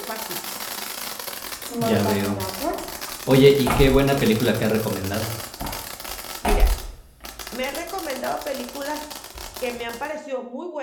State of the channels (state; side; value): identical; both; correlation 1.00